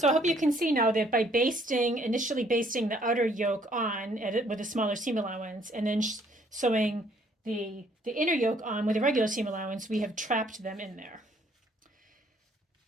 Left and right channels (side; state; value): both; normal; correlation 0.64